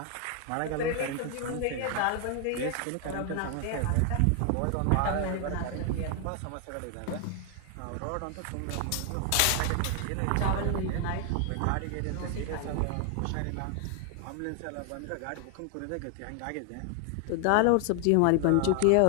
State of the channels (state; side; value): different; both; correlation 0.00